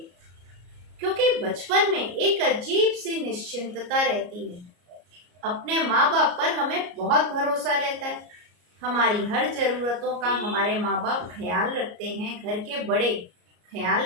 क्योंकि बचपन में एक अजीब सी निश्चिंतता रहती है। अपने माँ बाप पर हमें बहुत भरोसा रहता है। हमारी हर जरूरतों का हमारे माँ बाप ख्याल रखते हैं, घर के बड़े ख्याल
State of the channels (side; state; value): left; late; 33 ms